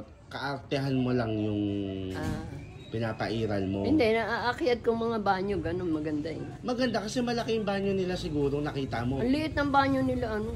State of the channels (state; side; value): identical; both; correlation 1.00